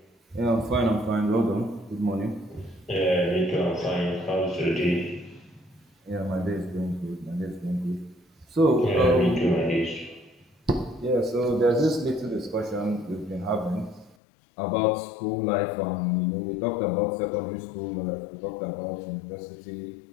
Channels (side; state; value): right; drops out; at 14.2 s